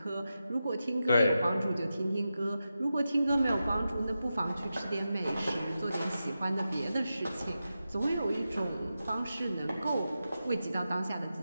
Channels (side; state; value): both; inverted; correlation -0.90